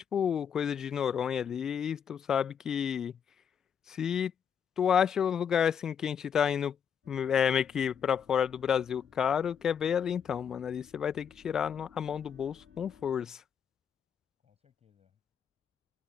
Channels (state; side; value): quieter; right; 7.8 dB